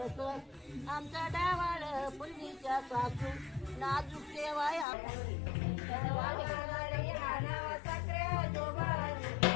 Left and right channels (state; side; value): drops out; right; at 4.9 s